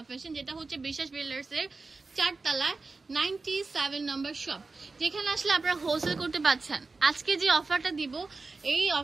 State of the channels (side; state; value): left; quieter; 3.9 dB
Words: ফ্যাশন, যেটা হচ্ছে বিশ্বাস বিল্ডার্স এর 4 তলায় 97 নম্বর শপ, যেখানে আসলে আপনারা হোলসেল করতে পারছেন। আজকে যে অফারটা দিব, এই